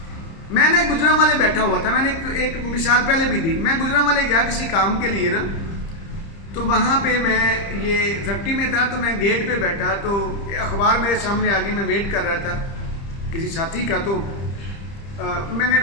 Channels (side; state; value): right; late; 30 ms